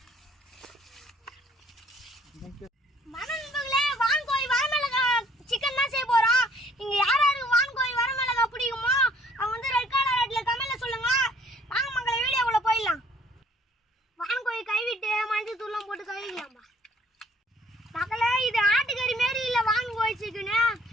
மனநண்பர்களே, வான்கோழி வரமிளகா சிக்கன் தான் செய்ய போறோம். இங்க யாராருக்கு வான்கோழி வரமிளகா பிடிக்குமோ அவங்க வந்து ரெட் கலர் ரெட்ல கமெண்ட்ல சொல்லுங்க. வாங்க மக்களை வீடியோக்குள்ள போயிடலாம். வான்கோழி கைவிட்டு மஞ்சள் தூள்லாம் போட்டு கழுவிக்கலாம்பா. மக்களே, இது ஆட்டுக்கறி மாரி இல்லை வான்கோழி சிக்கனு.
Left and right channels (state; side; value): normal; both; correlation 0.60